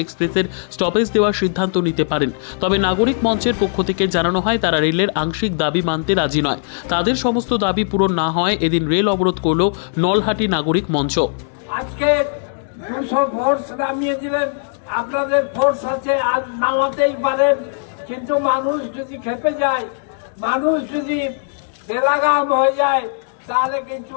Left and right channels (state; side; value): silent; right; digital silence